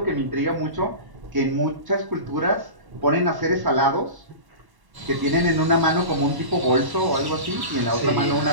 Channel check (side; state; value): left; late; 1.1 ms